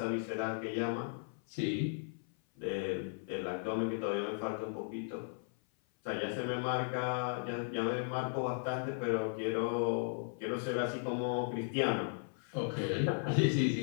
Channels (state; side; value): silent; right; 54 dB below the other